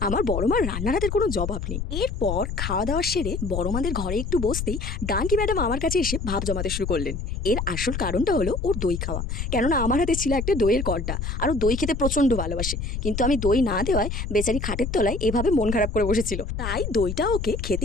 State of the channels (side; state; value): left; noise; rumble, 4 dB below the sound